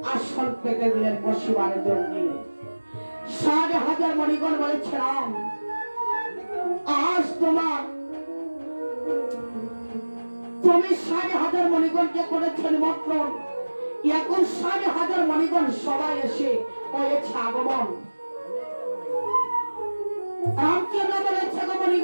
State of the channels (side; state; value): both; inverted; correlation -1.00